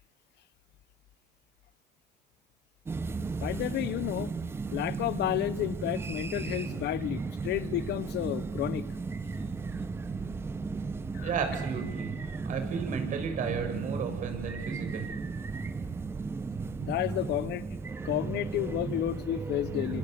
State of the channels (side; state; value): both; normal; correlation 0.43